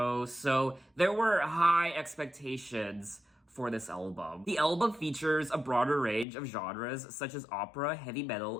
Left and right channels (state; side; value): drops out; right; at 6.2 s